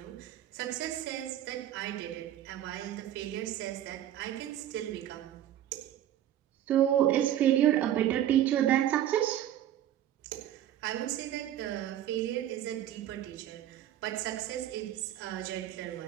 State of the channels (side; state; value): left; quieter; 11.8 dB